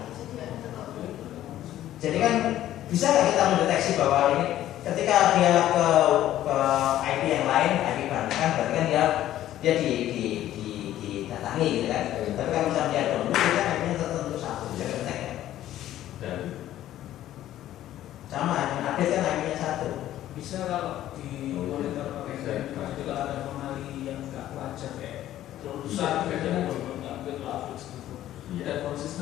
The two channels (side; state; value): right; quieter; 13.0 dB